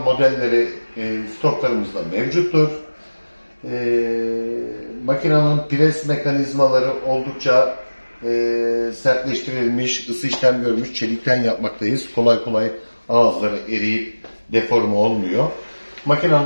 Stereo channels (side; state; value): both; inverted; correlation -1.00